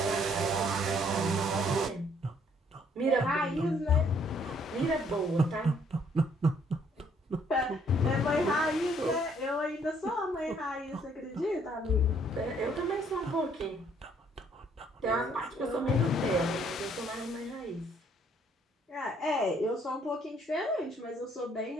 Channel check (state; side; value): normal; both; correlation 0.65